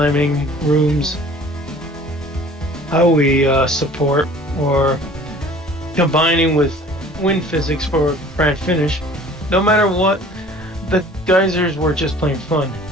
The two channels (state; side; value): normal; both; correlation 0.49